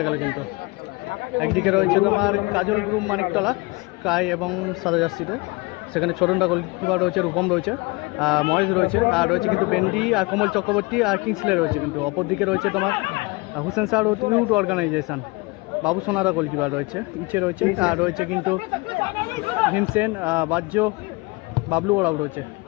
গেল কিন্তু একদিকে রয়েছে তোমার কাজল গ্রুপ মানিকতলা স্কাই এবং সাদা জার্সিতে, সেখানে ছোটনদা গোলকিপার রয়েছে, রূপম রয়েছে, মহেশ রয়েছে, আর রয়েছে কিন্তু বেন্ডি আর কমল চক্রবর্তী আর কিংসলে রয়েছে কিন্তু অপরদিকে রয়েছে তোমার হুসেন স্যার ইউথ অর্গানাইজেশন বাবু সোনাদা গোলকিপার রয়েছে, ইচ্ছে রয়েছে, আর রয়েছে কিন্তু ভীমসেন বাজ্য, বাবলু ওরাও রয়েছে,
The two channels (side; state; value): right; quieter; 25.6 dB